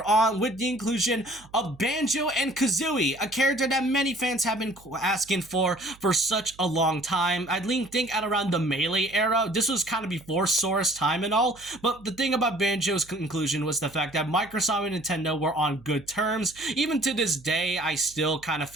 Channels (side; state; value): right; noise; hum, 24 dB below the sound